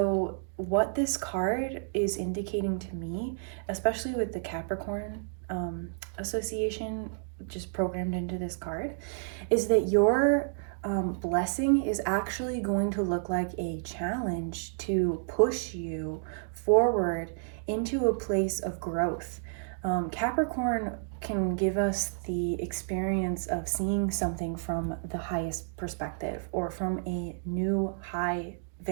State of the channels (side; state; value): left; silent; digital silence